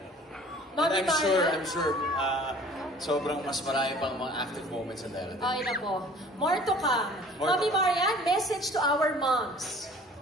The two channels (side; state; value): both; normal; correlation 0.49